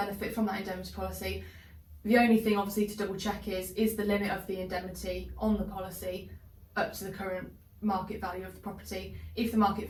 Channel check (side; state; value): both; identical; correlation 1.00